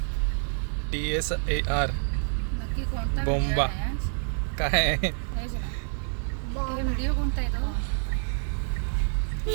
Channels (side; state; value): left; silent; 60 dB below the other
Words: TSAR बोंबा काय? व्हिडिओ कोणता आहे तो?